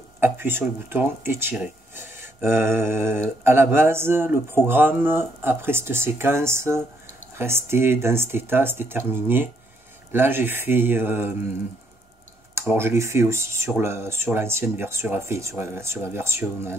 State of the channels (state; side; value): normal; both; correlation 0.72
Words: appuyer sur le bouton et tirer. À la base, le programme, après cette séquence, restait dans cet état, c'était terminé. Là j'ai fait... alors je l'ai fait aussi sur l'ancienne version, sur la version